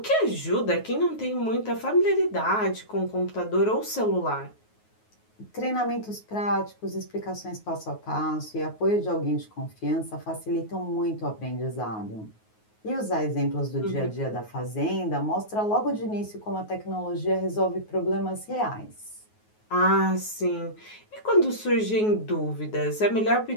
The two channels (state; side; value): late; right; 9.4 ms